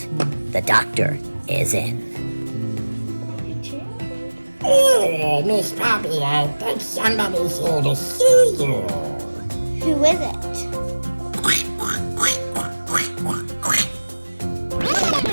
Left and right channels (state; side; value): inverted; both; correlation -1.00